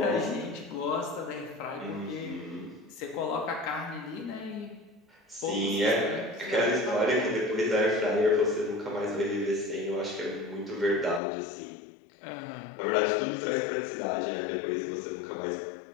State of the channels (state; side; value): drops out; right; at 11.2 s